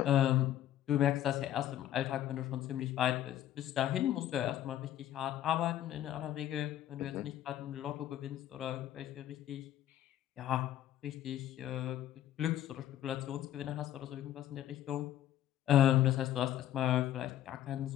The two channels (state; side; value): quieter; right; 12.1 dB